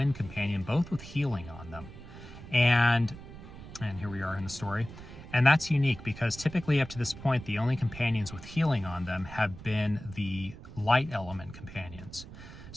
companion, both with healing on them. And here we are in the story. And that's unique because typically up to this point, the only companions with healing on them have been the light element companions.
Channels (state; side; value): noise; right; rumble, 15 dB below the sound